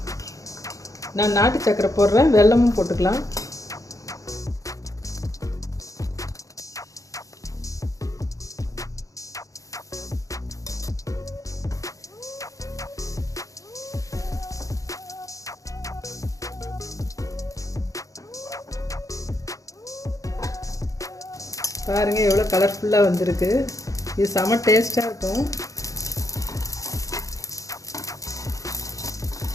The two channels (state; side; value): late; right; 0.16 ms